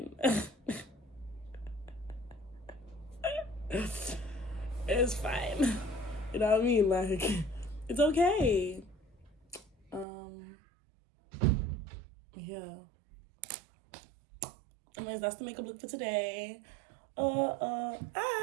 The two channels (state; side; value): drops out; left; at 10.1 s